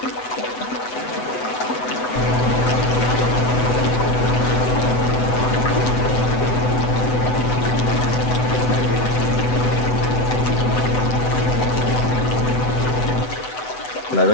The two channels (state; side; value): late; right; 8.0 ms